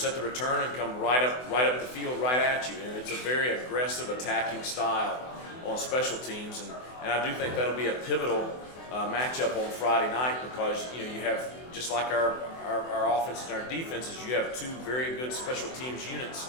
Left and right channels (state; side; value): late; right; 24 ms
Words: the return and come right up the field right at you. And it's a very aggressive attacking style on special teams, and I do think that'll be a pivotal matchup on Friday night, because you have, just like our offense and our defenses, you have 2 very good special teams